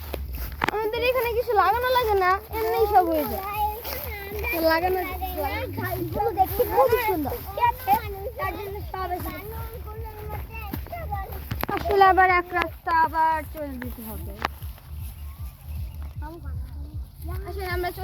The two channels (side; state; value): both; identical; correlation 1.00